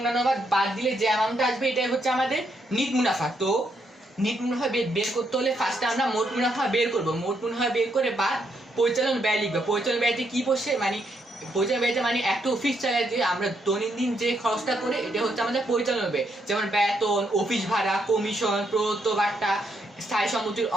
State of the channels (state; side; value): normal; both; correlation 0.76